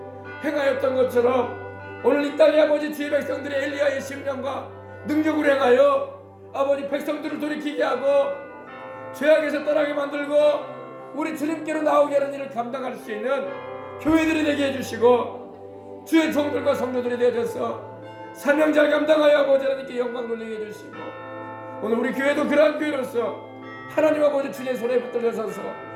행하였던 것처럼 오늘 이 땅에 아버지 주의 백성들이 엘리야의 심령과 능력으로 행하여 아버지 백성들을 돌이키게 하고 죄악에서 떠나게 만들고 우리 주님께로 나오게 하는 일을 감당할 수 있는 교회들이 되게 해주시고 주의 종들과 성도들이 되어져서 사명자를 감당하여 아버지 하나님께 영광 돌리게 해주시고 오늘 우리 교회도 그러한 교회로서 하나님 아버지 주의 손에 붙들려 서서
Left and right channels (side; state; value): both; identical; correlation 1.00